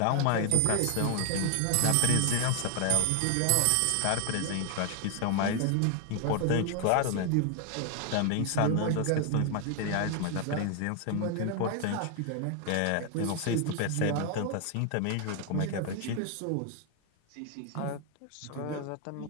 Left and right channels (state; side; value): different; both; correlation 0.00